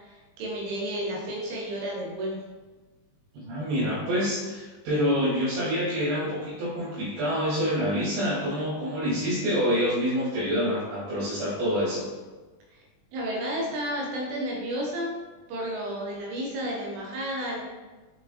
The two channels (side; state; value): left; late; 20 ms